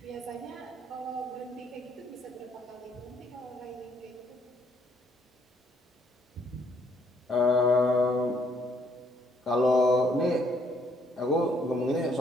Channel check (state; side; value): normal; both; correlation 0.69